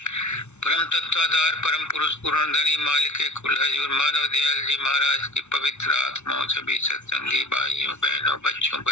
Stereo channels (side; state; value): right; late; 0.82 ms